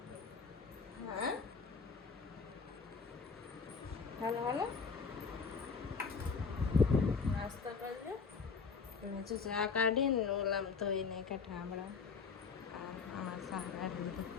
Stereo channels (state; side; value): quieter; right; 5.3 dB